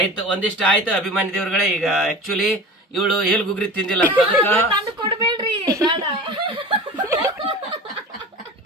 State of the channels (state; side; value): normal; both; correlation 0.36